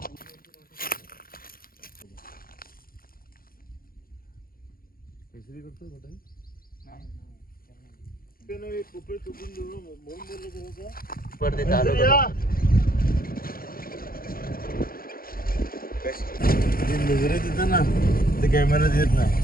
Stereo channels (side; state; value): right; late; 0.42 ms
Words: नजरे तिथं ना ते कॅमेऱ्यात येत नाही.